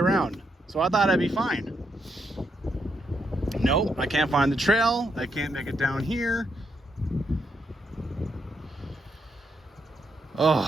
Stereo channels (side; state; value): both; normal; correlation 0.79